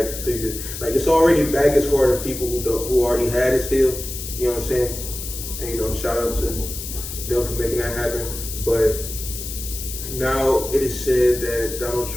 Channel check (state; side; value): noise; left; hiss, 8 dB below the sound